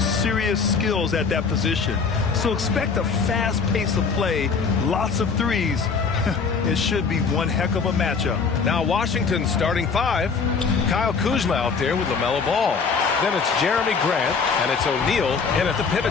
skills at that position. So expect a fast pace of play, lots of threes. It should be one heck of a matchup. Now Washington starting five. Kyle Kuzma out there with LaMelo Ball. Then it's Jeremy Grant, and it's O'Neal in at the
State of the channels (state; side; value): quieter; right; 5.3 dB